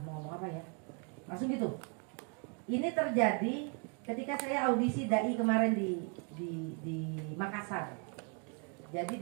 mau ngomong apa ya? Langsung gitu. Ini terjadi ketika saya audisi dai kemarin di Makassar. Jadi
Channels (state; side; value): quieter; left; 36.6 dB